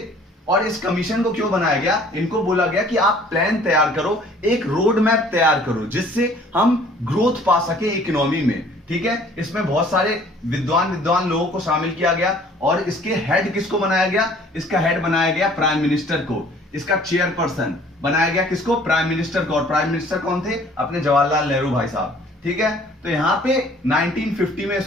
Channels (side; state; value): both; normal; correlation 0.54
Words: और इस कमीशन को क्यों बनाया गया? इनको बोला गया कि आप प्लान तैयार करो, एक रोड मैप तैयार करो, जिससे हम ग्रोथ पा सके इकोनॉमी में। ठीक है, इसमें बहुत सारे विद्वान लोगों को शामिल किया गया और इसके हेड किसको बनाया गया? इसका हेड बनाया गया प्राइम मिनिस्टर को। इसका चेयरपर्सन बनाया गया किसको? प्राइम मिनिस्टर को। और प्राइम मिनिस्टर कौन थे? अपने जवाहरलाल नेहरू भाई साहब। ठीक है, तो यहां पे 1950 में